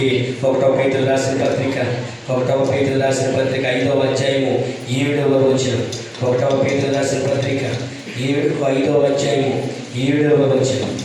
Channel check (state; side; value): identical; both; correlation 1.00